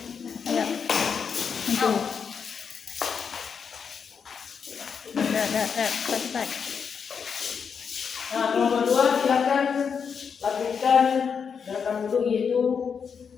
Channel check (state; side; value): quieter; right; 6.5 dB